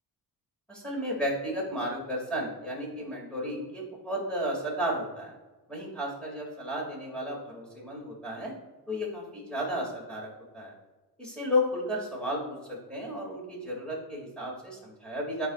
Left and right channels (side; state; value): both; normal; correlation -0.10